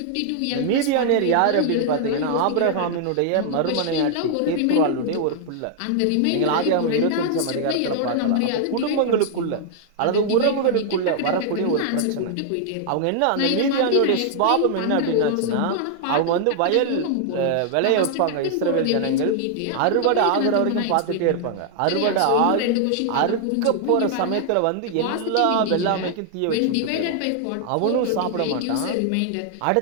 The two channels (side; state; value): both; different; correlation -0.01